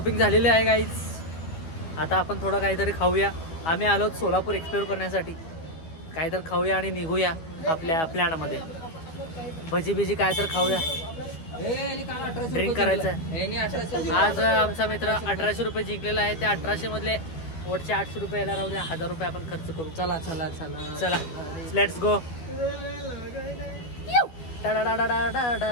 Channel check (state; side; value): late; right; 12 ms